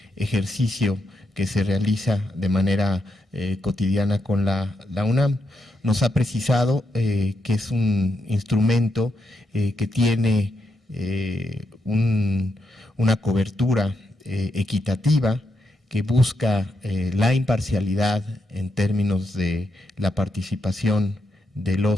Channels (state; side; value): normal; both; correlation 0.81